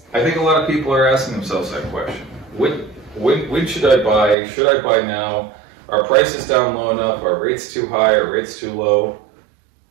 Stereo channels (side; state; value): left; drops out; at 4.4 s